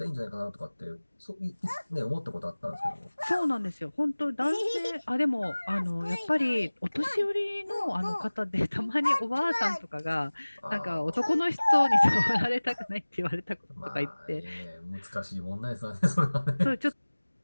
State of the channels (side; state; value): both; inverted; correlation -1.00